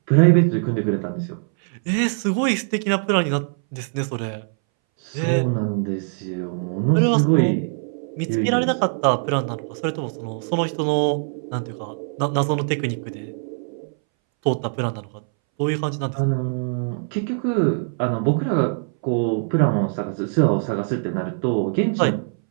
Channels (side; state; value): left; silent; 62 dB below the other